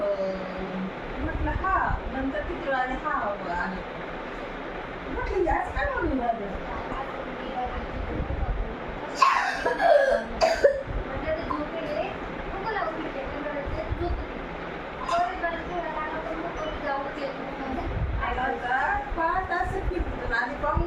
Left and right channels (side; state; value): both; identical; correlation 1.00